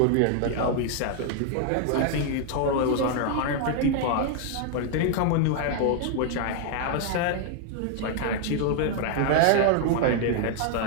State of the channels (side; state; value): both; different; correlation 0.00